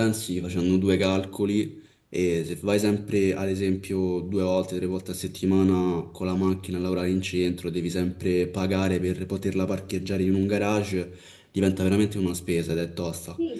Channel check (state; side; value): identical; both; correlation 1.00